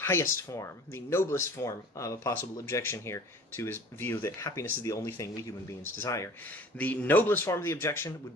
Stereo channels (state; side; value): normal; both; correlation 0.46